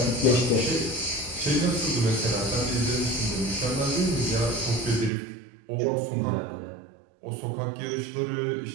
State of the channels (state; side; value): drops out; left; at 5.1 s